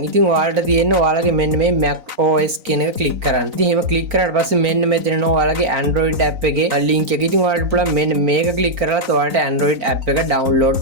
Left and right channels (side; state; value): left; late; 4.0 ms